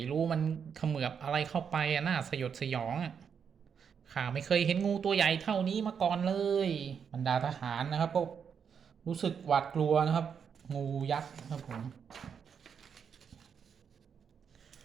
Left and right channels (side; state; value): left; quieter; 7.0 dB